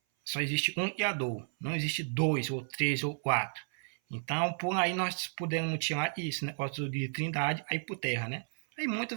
só existe um Criador. Não existe dois, ou três, ou quatro. Então, por aí nós podemos tirar isso, negócio de trindade, aí por terra, né? Aí muitos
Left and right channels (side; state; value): left; silent; 56 dB below the other